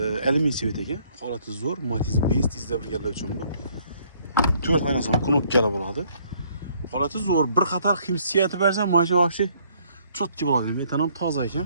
alyumin sveta ekan. Holati zo'r, Matiz 5 tizda birgalar uchun bu. 4 oynasan knopkali bo'ladi. Holati zo'r, bir qator hissiyati bersa, mashina vaqti chotki bo'ladi. Metan ham toza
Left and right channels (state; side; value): inverted; both; correlation -0.64